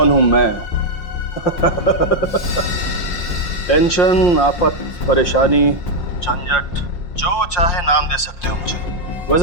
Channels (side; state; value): right; late; 5.6 ms